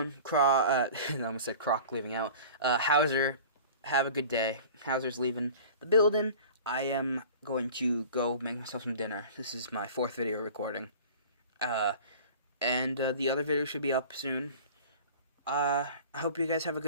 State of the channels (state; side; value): inverted; both; correlation -0.41